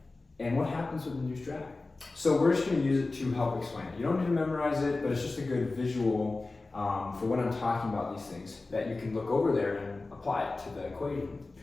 and what happens with induced drag. So we're just going to use it to help explain it. You don't need to memorize it, but it's just a good visual for when I'm talking about these things that you can look over there and apply it to the equation.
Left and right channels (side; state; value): right; quieter; 3.4 dB